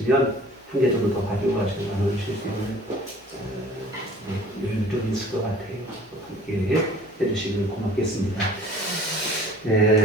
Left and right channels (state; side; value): normal; both; correlation 0.49